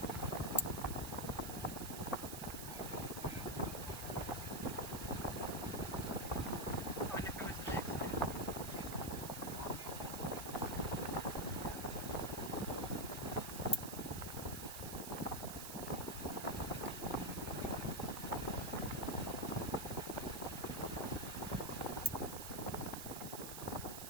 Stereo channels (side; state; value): right; noise; hiss, 7 dB below the sound